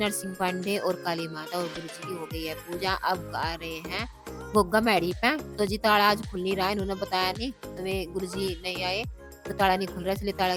पांडे और काली माता और गुरु जी की हो गई है पूजा। अब आ रहे हैं गुग्गा मैडी पे। तो जी ताला आज खुल नहीं रहा है, इन्होंने बताया नहीं, तुम्हें गुरु जी नहीं आए तो ताला नहीं खुल रहा, इसलिए ताला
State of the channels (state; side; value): identical; both; correlation 1.00